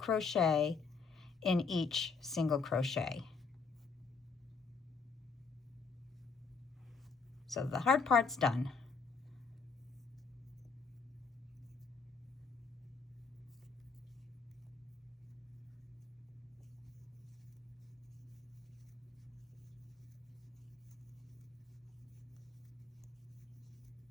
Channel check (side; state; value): right; quieter; 4.8 dB